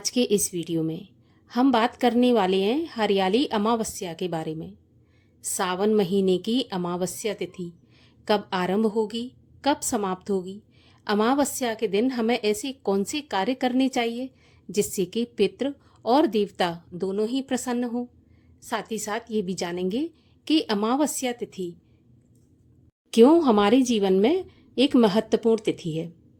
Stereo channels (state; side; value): identical; both; correlation 1.00